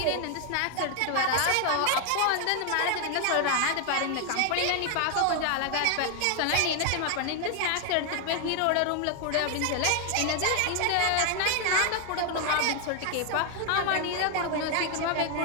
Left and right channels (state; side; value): different; both; correlation 0.00